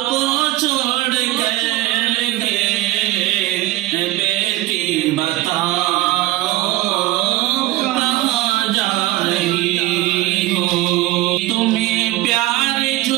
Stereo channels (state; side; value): quieter; left; 16.8 dB